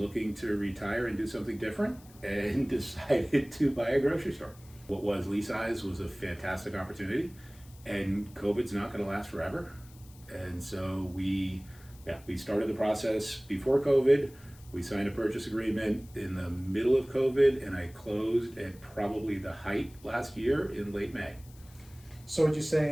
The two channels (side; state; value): left; noise; hiss, 24 dB below the sound